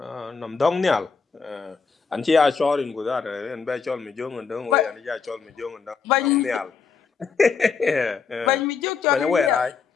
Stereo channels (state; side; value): quieter; right; 5.5 dB